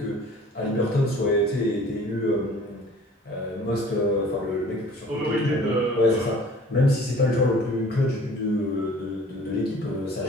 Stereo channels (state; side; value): normal; both; correlation 0.49